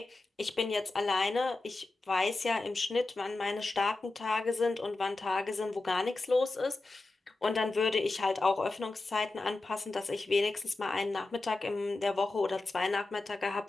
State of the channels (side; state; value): right; quieter; 3.2 dB